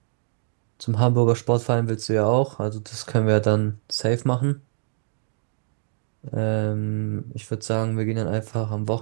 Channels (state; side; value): silent; left; digital silence